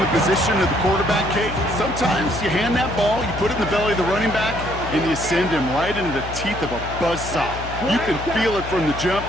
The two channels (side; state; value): left; noise; hum, 10 dB below the sound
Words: the position of the quarterback, Kate, sometimes you hand that ball, you put it in the belly of the running back, and you send him right into the teeth of a buzzsaw. You can feel it from the jump,